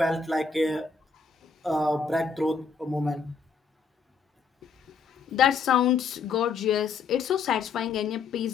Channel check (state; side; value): quieter; right; 5.3 dB